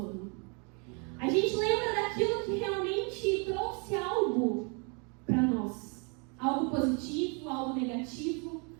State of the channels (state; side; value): quieter; left; 35.3 dB